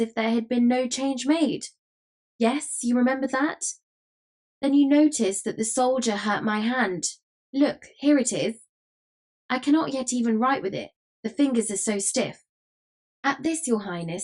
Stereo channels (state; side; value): identical; both; correlation 1.00